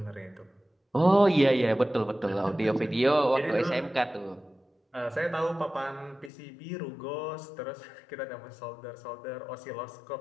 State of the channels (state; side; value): drops out; right; at 6.3 s